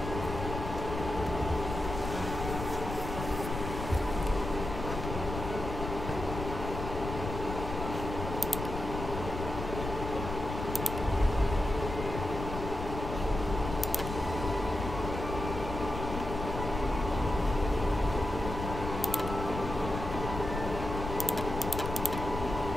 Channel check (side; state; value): left; noise; rumble, 6 dB below the sound